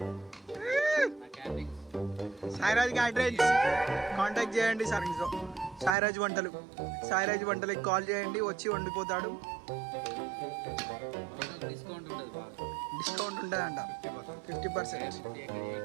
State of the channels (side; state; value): left; drops out; at 6.0 s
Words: Sairaj address contact చేయండి సర్వీస్లో. సాయిరాజ్ వంటలకి కాల్ చేయండి, వచ్చి వండిపోతాడు. డిస్కౌంట్ ఉంటుందంట 50%.